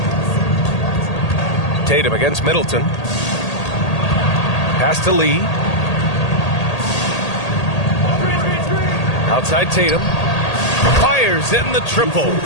Tatum against Middleton. Pass to Lee. Outside Tatum. Fires in the triple.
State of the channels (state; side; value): late; right; 1.8 ms